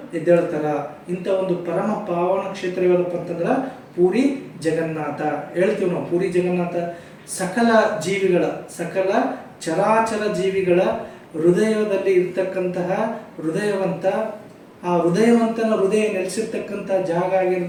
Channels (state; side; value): identical; both; correlation 1.00